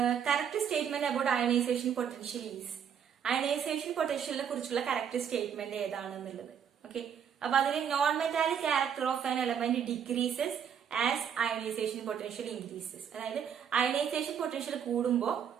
correct statement about ionisation potential is. Ionisation പൊട്ടൻഷ്യലിനെ കുറിച്ചുള്ള കറക്റ്റ് സ്റ്റേറ്റ്മെന്റ് ഏതാണെന്നുള്ളത്. ഓക്കെ, അപ്പൊ അതിൽ non metallic character of an element decreases as ionisation potential increases. അതായത് അയണൈസേഷൻ പൊട്ടൻഷ്യൽ കൂടുമ്പോ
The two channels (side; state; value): left; quieter; 8.1 dB